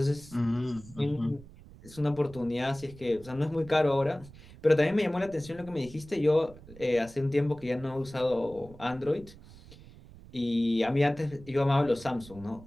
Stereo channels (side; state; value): right; noise; rumble, 20 dB below the sound